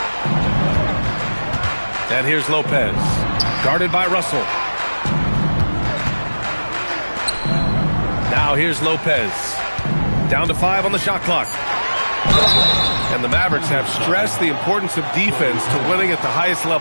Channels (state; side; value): inverted; both; correlation -1.00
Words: And here's Lopez. Guarded by Russell. Now here's Lopez. Down to 5 on the shot clock. And the Mavericks have stressed the importance of defense to winning at the highest